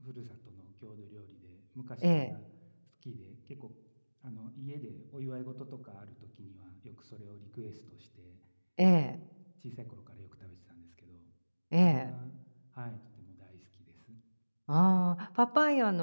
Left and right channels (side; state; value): both; inverted; correlation -1.00